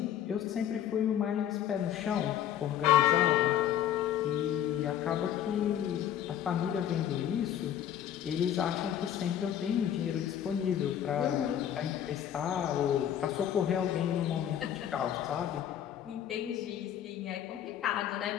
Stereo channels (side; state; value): right; quieter; 10.3 dB